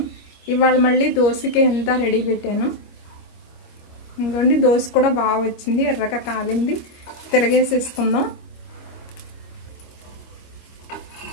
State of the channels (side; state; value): right; late; 25 ms